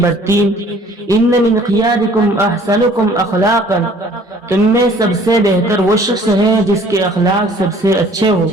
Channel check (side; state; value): both; normal; correlation 0.54